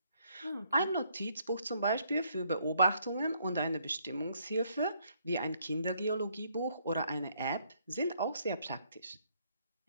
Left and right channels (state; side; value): inverted; both; correlation -0.69